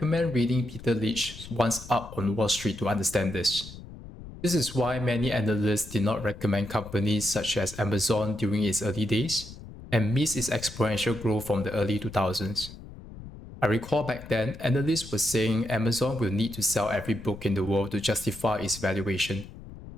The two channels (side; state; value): left; noise; rumble, 15 dB below the sound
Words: reading Peter Lynch's Once Up on Wall Street to understand this. This is why many analysts did not recommend companies such as Amazon during its early days and missed its exponential growth from the early 2000s. I recall back then, analysts were saying Amazon will need to sell every book in the world to justify its valuation.